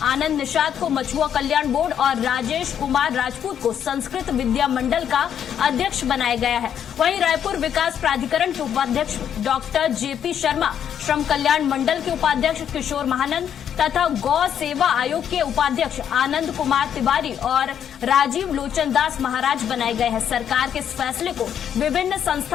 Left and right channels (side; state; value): right; quieter; 9.0 dB